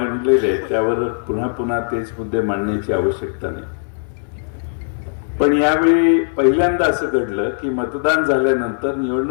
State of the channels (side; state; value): right; silent; digital silence